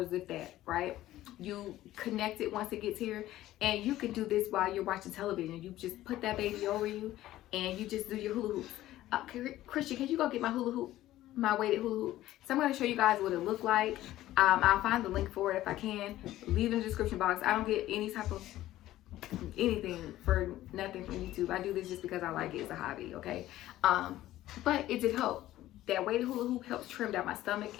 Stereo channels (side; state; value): right; quieter; 14.7 dB